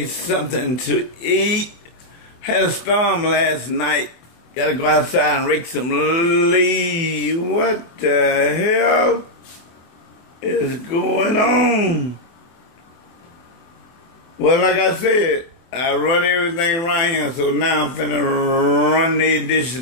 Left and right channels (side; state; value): right; late; 24 ms